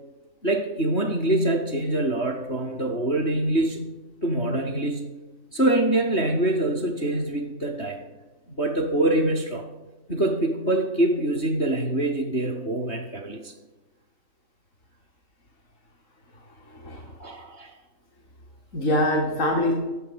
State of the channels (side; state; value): right; late; 3.2 ms